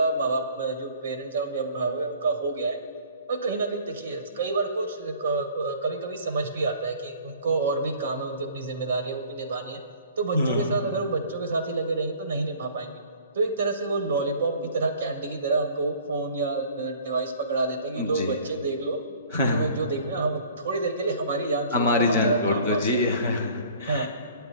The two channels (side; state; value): both; inverted; correlation -0.51